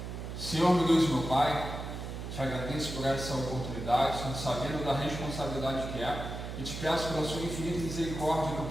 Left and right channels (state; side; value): noise; right; hum, 7 dB below the sound